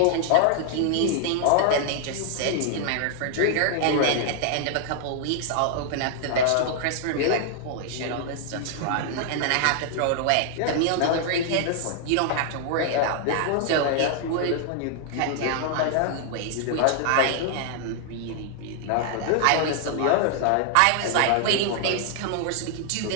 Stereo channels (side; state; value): both; different; correlation 0.00